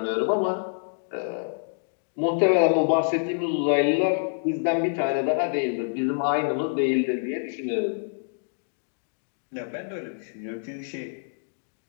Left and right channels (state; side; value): silent; right; digital silence